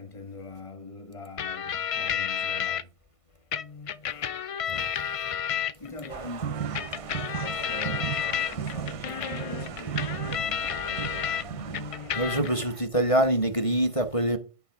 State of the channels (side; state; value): right; late; 1.5 ms